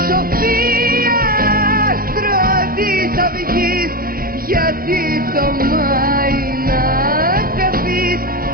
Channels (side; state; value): left; late; 0.42 ms